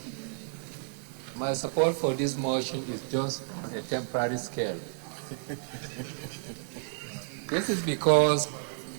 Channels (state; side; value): silent; left; 57 dB below the other